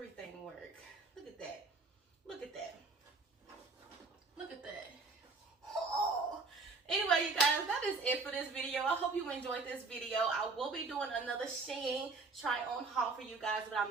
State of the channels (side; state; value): left; quieter; 4.0 dB